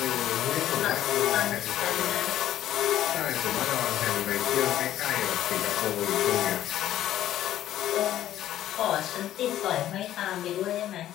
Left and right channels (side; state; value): right; quieter; 12.6 dB